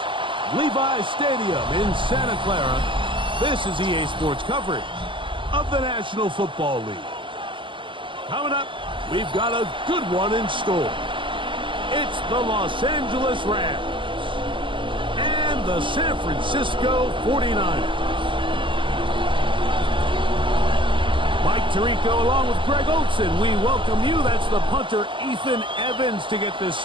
Levi's Stadium in Santa Clara, this is EA Sports coverage of the National Football League. Coming up, we've got a good one in store. It's the Los Angeles Rams and the San Francisco 49ers. Mike Tirico along with Greg Olson, we welcome you. That's the punter Ethan Evans to get this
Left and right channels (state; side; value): late; left; 0.24 ms